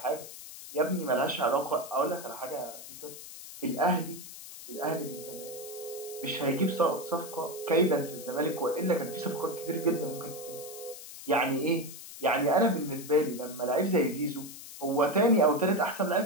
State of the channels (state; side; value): noise; left; hiss, 13 dB below the sound